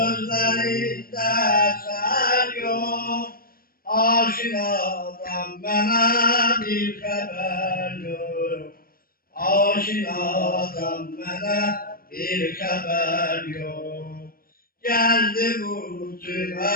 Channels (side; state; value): right; late; 0.42 ms